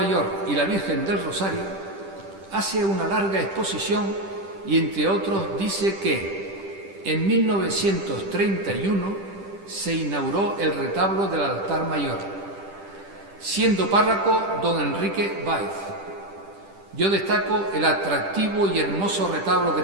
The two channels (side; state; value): left; late; 10 ms